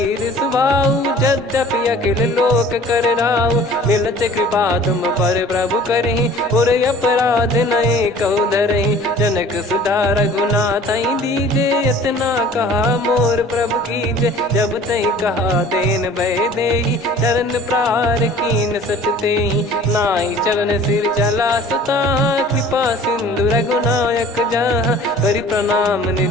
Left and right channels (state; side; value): normal; both; correlation 0.48